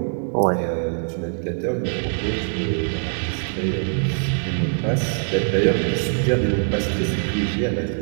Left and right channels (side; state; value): left; silent; digital silence